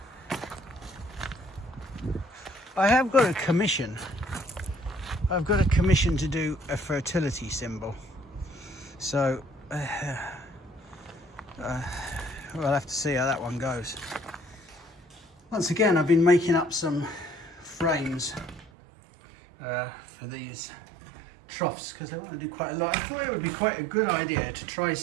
I have got a commission. I've got a commission to do a fertility symbol. So we'll have to see how that one goes. Once again, I've been making up some frames for these troughs because I want to do quite a lot. I thought it would be quite a good idea to try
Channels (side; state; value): left; drops out; at 18.7 s